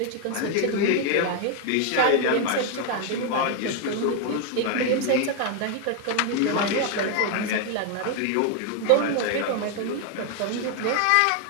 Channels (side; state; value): both; different; correlation 0.00